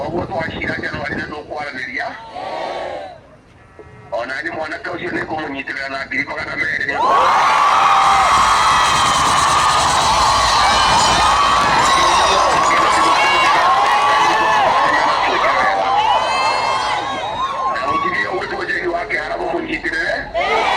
twacira Januari nä tå kwaranä ria ona nä mwanake å cio nä ngå må nyitä rä ra na 200,000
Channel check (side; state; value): both; identical; correlation 1.00